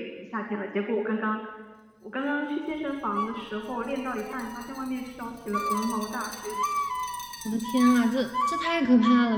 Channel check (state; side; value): identical; both; correlation 1.00